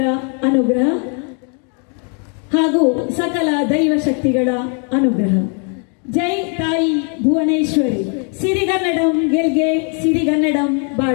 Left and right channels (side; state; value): right; quieter; 39.9 dB